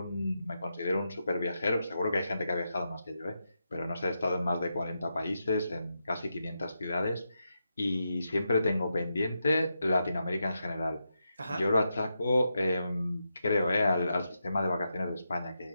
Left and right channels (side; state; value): both; inverted; correlation -0.86